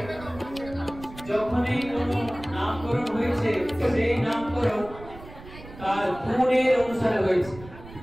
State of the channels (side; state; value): right; noise; rumble, 16 dB below the sound